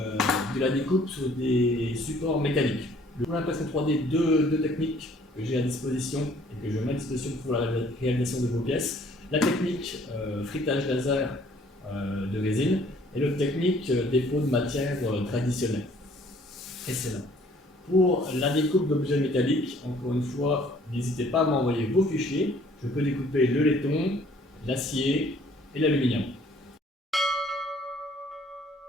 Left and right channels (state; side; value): normal; both; correlation 0.58